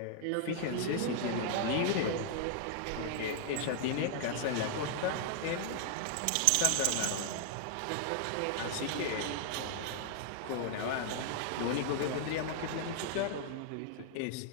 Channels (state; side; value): different; both; correlation 0.00